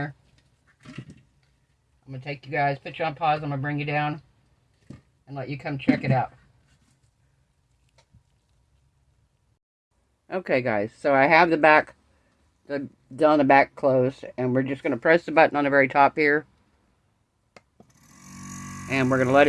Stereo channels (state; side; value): identical; both; correlation 1.00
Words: I'm going to take you guys, put you on pause. I'm going to bring you down and let you come check it out. Okay guys, so I have the back, down the back closed, and we're just going to press the button on the very top here, and we're going to let